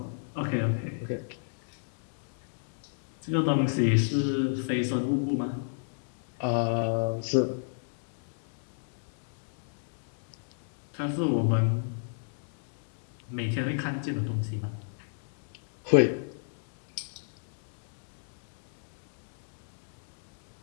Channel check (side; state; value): right; silent; digital silence